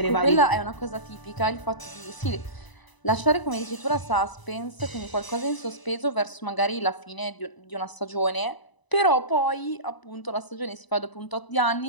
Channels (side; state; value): right; late; 1.0 ms